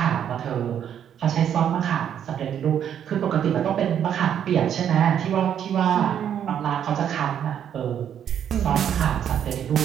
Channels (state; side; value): quieter; left; 9.3 dB